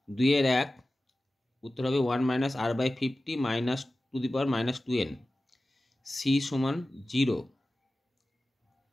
2 এর 1 উত্তর হবে 1 - r/50 - 2n। c = 0।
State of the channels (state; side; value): normal; both; correlation 0.95